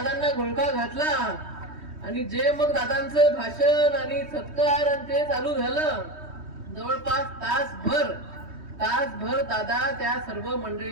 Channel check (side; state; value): left; late; 3.2 ms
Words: घोळका घातला आणि जे मग दादांचं भाषण आणि सत्कार आणि ते चालू झालं, जवळपास तासभर दादा त्या सर्व